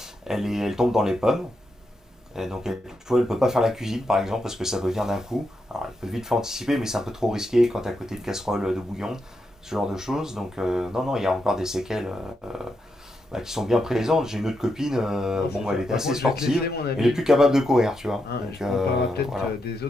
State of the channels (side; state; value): both; normal; correlation 0.84